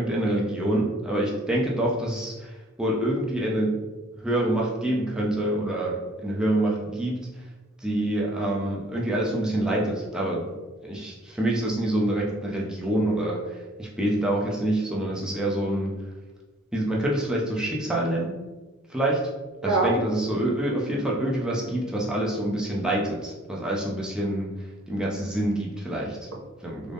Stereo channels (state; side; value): normal; both; correlation 0.58